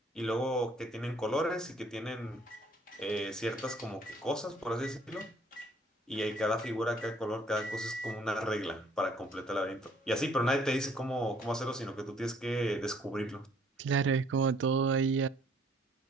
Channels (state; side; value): normal; both; correlation 0.61